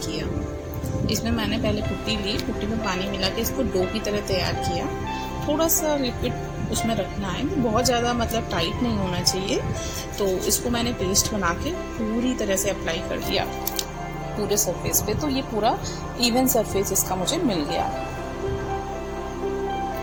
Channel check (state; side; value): identical; both; correlation 1.00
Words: किया। इसमें मैंने पहले पुट्टी ली, पुट्टी में पानी मिला के इसको डो की तरह तैयार किया। थोड़ा सा लिक्विड उसमें रखना है, बहुत ज़्यादा मतलब टाइट नहीं होना चाहिए। तो इसको मैंने पेस्ट बना के पूरी तरह से अप्लाई कर दिया पूरे सरफेस पे। तो ये पूरा इवन सरफेस इसका मुझे मिल गया।